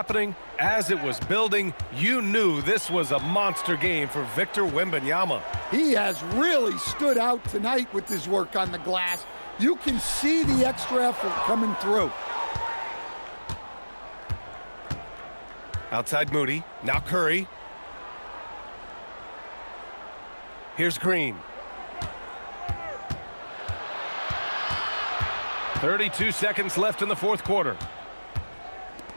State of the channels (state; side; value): inverted; both; correlation -1.00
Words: as it was building, you knew this was a monster game for Victor Wembanyama. He has really stood out tonight with his work on the glass. You can see the extra effort coming through. Outside Moody, now Curry. Here's Green. 32 seconds left in the fourth quarter.